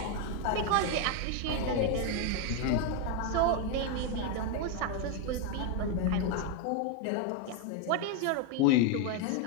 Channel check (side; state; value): both; different; correlation 0.01